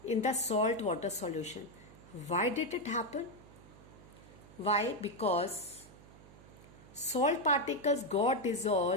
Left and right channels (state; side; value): noise; right; hum, 21 dB below the sound